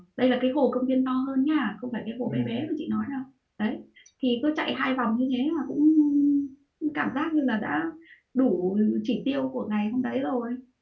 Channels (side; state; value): both; identical; correlation 1.00